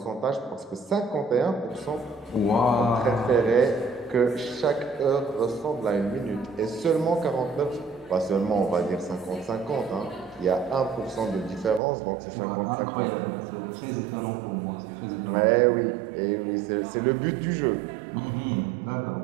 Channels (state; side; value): drops out; left; at 11.8 s